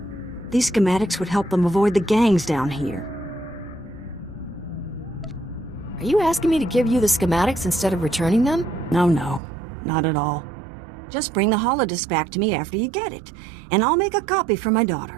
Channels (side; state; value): left; drops out; at 9.4 s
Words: These schematics would help them avoid the gangs down here. Are you asking me to give you the schematics instead of returning them? No, not at all. Just bring the holodisk back to me after you get it, and I'll make a copy for my